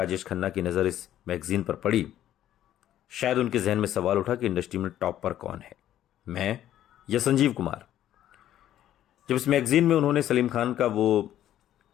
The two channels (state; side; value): quieter; right; 12.0 dB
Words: खन्ना की नज़र इस मैगजीन पर पड़ी, शायद उनके जहन में सवाल उठा कि इंडस्ट्री में टॉप पर कौन है, मैं या संजीव कुमार। जब इस मैगजीन में उन्होंने सलीम खान का वो